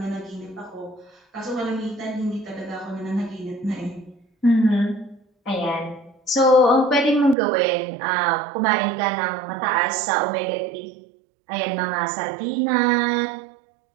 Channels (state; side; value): drops out; left; at 7.4 s